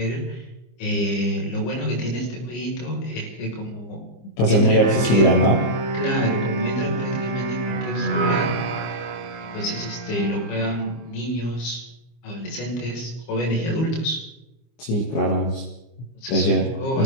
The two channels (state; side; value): late; right; 25 ms